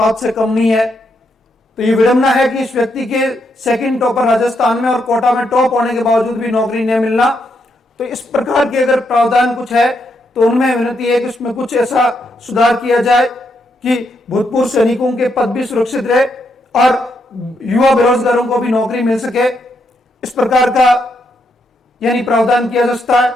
से कम नहीं है। तो ये विडंबना है कि इस व्यक्ति के सेकंड टॉपर राजस्थान में और कोटा में टॉप होने के बावजूद भी नौकरी नहीं मिलना। तो इस प्रकार के अगर प्रावधान कुछ है तो उनमें विनती है कि उसमें कुछ ऐसा सुधार किया जाए कि भूतपूर्व सैनिकों के पद भी सुरक्षित रहे और युवा बेरोजगारों को भी नौकरी मिल सके। इस प्रकार का यानी प्रावधान किया जा सकता है,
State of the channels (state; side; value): normal; both; correlation 0.79